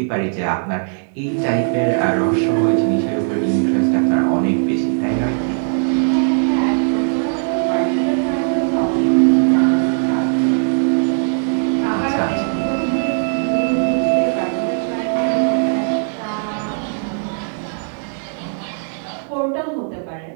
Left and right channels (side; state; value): left; silent; 67 dB below the other